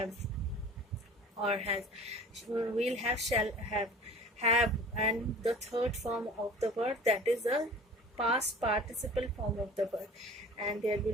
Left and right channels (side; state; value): both; normal; correlation 0.43